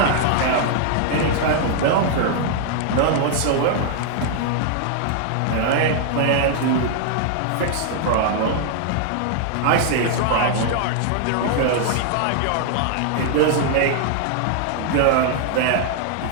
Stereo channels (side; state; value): both; different; correlation 0.00